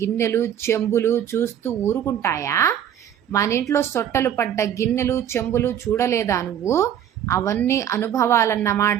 చెంబులు చూస్తూ ఊరుకుంటాయా? మన ఇంట్లో సొట్టలు పడ్డ గిన్నెలు చెంబులు చూడలేదా నువ్వు? అవన్నీ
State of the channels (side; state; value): left; quieter; 10.0 dB